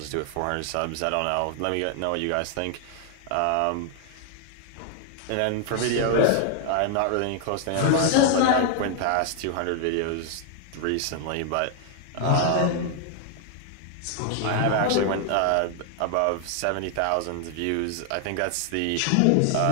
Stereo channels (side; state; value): both; different; correlation 0.00